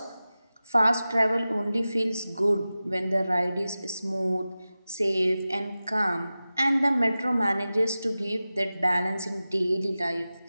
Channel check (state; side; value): inverted; both; correlation -0.95